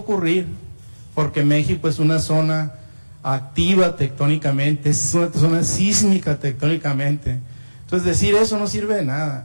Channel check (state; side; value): inverted; both; correlation -1.00